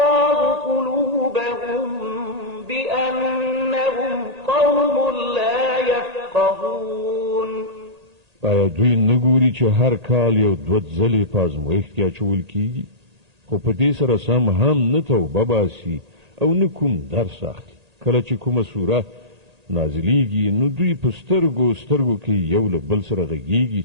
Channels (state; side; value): late; left; 1.8 ms